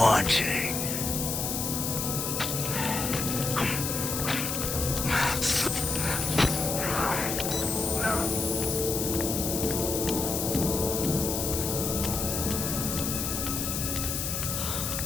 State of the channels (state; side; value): noise; left; hiss, 2 dB below the sound